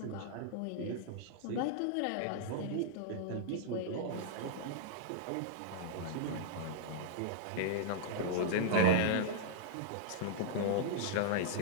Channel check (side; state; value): both; different; correlation -0.02